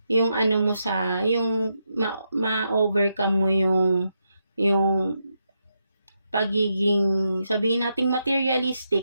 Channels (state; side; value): inverted; both; correlation -0.83